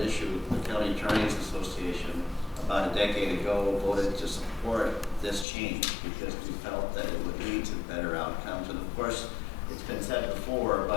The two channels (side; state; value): right; drops out; at 5.5 s